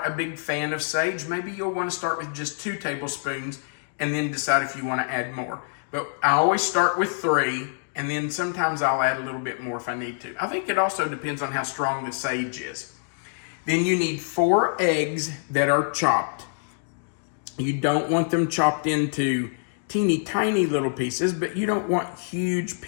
a big fan of sage, maybe you'll want to start with just 2 tablespoons and then decide if you want to add more. But I always start with 3, and then sometimes I'll add a little bit more if I need to. I think it also depends on how strong the sage is. Then you need 4 eggs that are chopped. You don't want them chopped into teeny tiny little pieces, but you don't want huge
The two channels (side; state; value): right; silent; digital silence